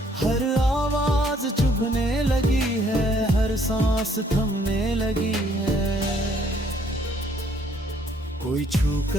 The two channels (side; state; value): both; normal; correlation 0.65